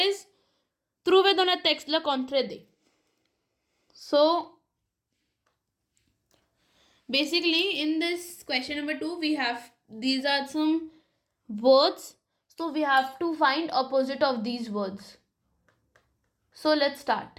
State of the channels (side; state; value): both; identical; correlation 1.00